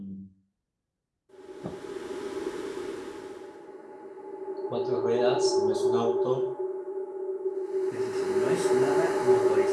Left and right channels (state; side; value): identical; both; correlation 1.00